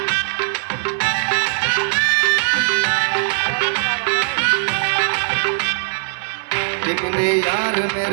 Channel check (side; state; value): left; silent; digital silence